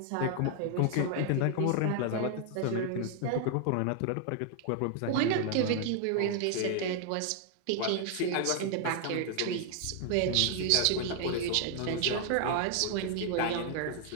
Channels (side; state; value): both; different; correlation 0.00